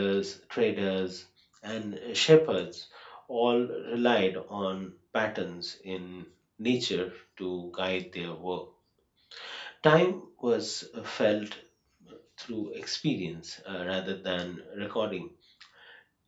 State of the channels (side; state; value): both; identical; correlation 1.00